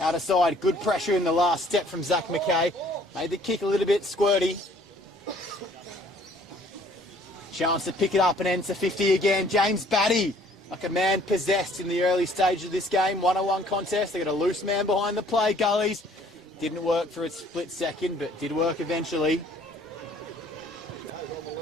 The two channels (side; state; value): both; normal; correlation 0.58